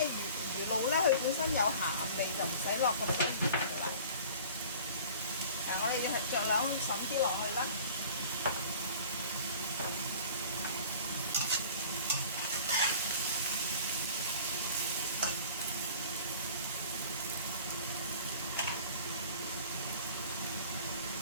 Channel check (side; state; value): both; inverted; correlation -0.45